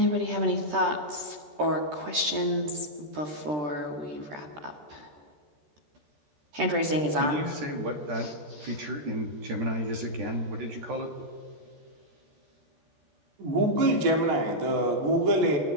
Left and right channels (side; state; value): left; late; 13 ms